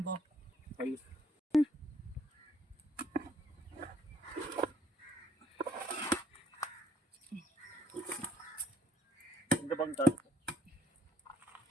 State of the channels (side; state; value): both; normal; correlation 0.68